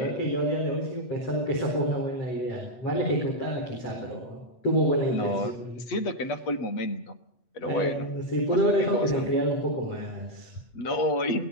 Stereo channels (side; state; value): right; late; 8.1 ms